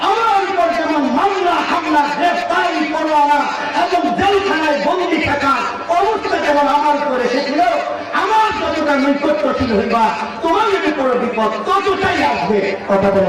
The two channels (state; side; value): identical; both; correlation 1.00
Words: আমার উপর যেমন মামলা হামলা, গ্রেফতারি, পরোয়ানা এবং জেলখানায় বন্দী থাকা অবস্থা যেমন আমার উপর এসেছিল, আমার যতটা নৈকট্যশীল হইবা, তোমার যদি কোনো বিপদ ততটাই আসবে। কথা